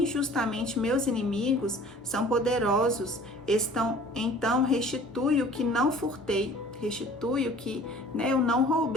meus inimigos, são poderosos. Então restitui o que não furtei, restitui o que eu não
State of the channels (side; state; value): both; normal; correlation 0.49